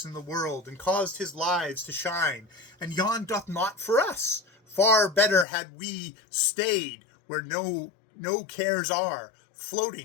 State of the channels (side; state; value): right; drops out; at 5.5 s